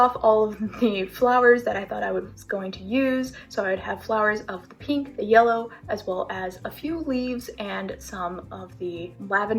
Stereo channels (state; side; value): identical; both; correlation 1.00